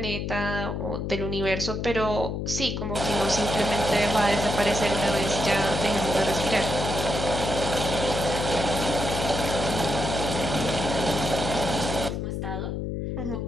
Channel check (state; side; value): noise; left; hum, 3 dB below the sound